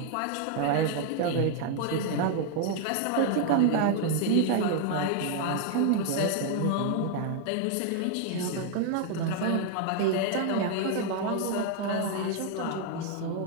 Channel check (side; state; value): both; different; correlation 0.00